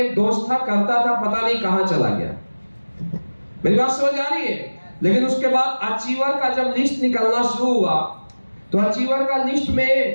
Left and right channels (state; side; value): inverted; both; correlation -1.00